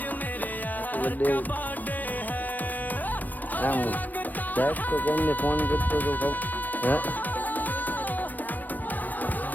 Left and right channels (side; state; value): right; late; 0.083 ms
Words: દસ તો કેમને ફોન કરતો તો